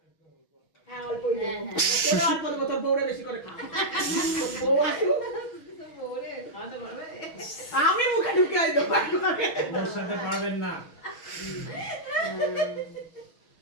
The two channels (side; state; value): right; late; 6.3 ms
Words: বউরে বেশি করে খাও বউ আসুক আমি মুখে ঢুকিয়ে দেবো ওর সাথে পারবেন না।